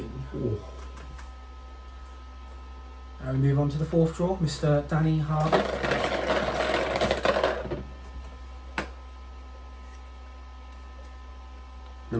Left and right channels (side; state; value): both; identical; correlation 1.00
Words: Oh. Now we move on to the 4th draw, Mr. Danny Harvey.